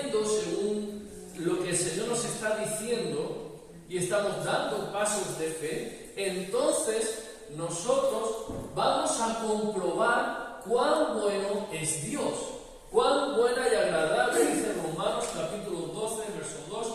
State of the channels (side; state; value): both; identical; correlation 1.00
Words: según lo que el Señor nos está diciendo y estamos dando pasos de fe, entonces nosotros vamos a comprobar cuán bueno es Dios. Cuán buena y agradable, dice Romanos capítulo 12, verso